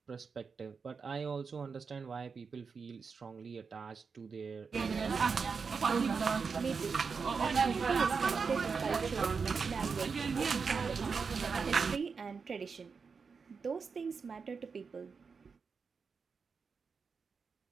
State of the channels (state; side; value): quieter; left; 5.3 dB